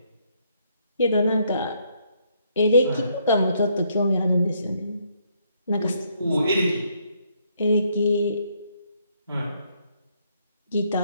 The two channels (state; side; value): inverted; both; correlation -0.71